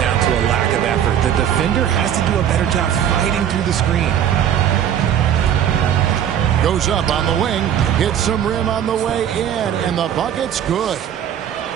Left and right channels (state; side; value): quieter; left; 9.7 dB